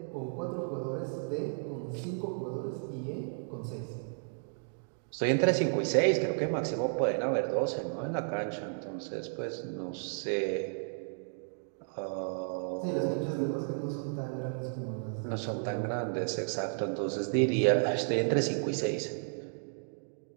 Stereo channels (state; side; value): silent; left; digital silence